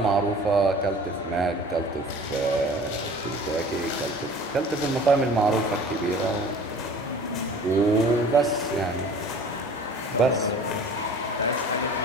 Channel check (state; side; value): normal; both; correlation 0.45